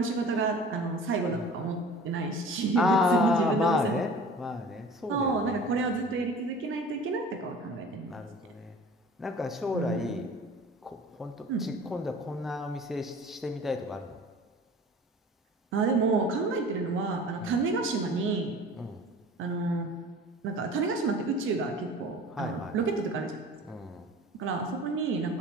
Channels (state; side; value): normal; both; correlation 0.42